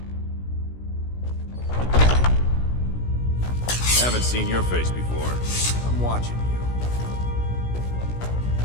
Haven't seen your face before. I'm watching you.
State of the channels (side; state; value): right; late; 17 ms